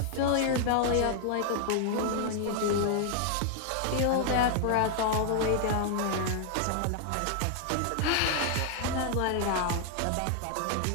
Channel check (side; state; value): both; different; correlation 0.00